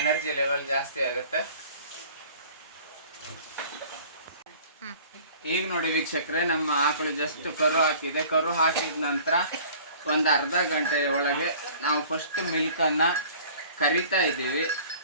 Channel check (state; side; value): inverted; both; correlation -0.48